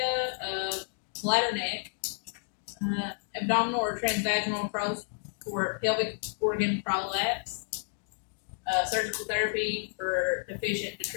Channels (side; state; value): right; silent; digital silence